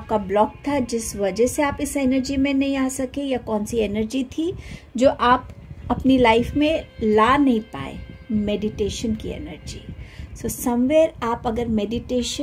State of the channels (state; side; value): identical; both; correlation 1.00